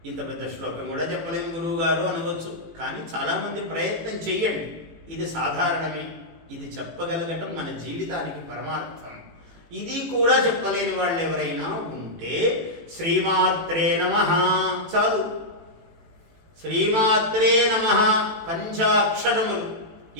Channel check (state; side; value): late; left; 18 ms